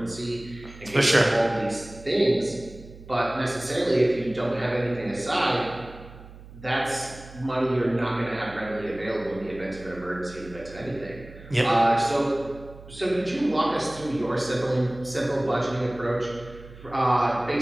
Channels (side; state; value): right; noise; hum, 18 dB below the sound